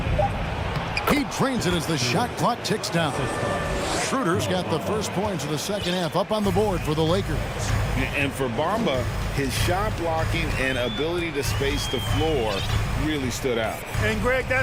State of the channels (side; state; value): both; identical; correlation 1.00